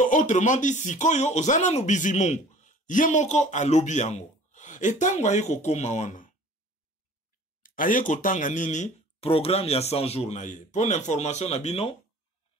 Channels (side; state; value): both; normal; correlation 0.48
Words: autrement dit, sikoyo ozana no bizimungu. Yemoko a lobby yango. Et tango aye ko koma wana. Aye ko tanga nini programme ya 100 jours na ye. Pour l'information na bino,